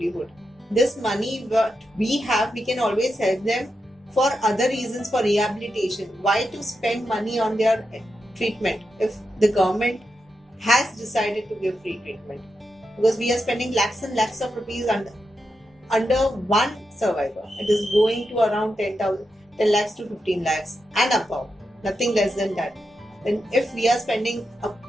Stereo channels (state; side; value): normal; both; correlation 0.87